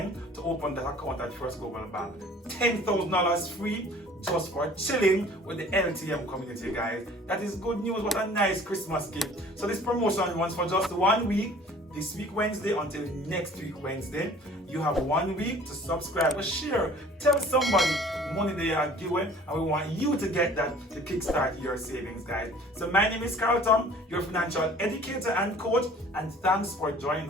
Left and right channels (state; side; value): normal; both; correlation 0.50